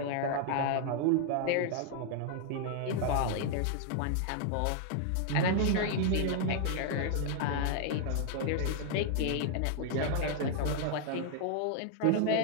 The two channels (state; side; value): different; both; correlation 0.00